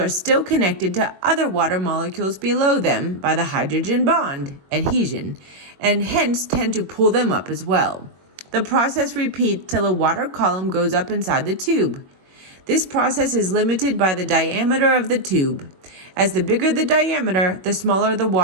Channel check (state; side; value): late; left; 21 ms